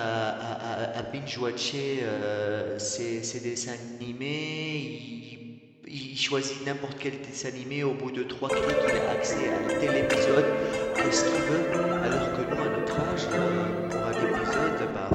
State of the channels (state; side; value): identical; both; correlation 1.00